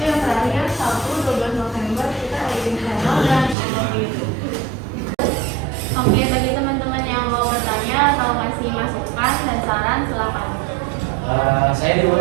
yang terakhir Sabtu 12 November kita editing channel dan upload YouTube. Oke, bagi teman-teman yang mau bertanya atau kasih masukan dan saran silakan. Saya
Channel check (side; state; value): left; drops out; at 3.6 s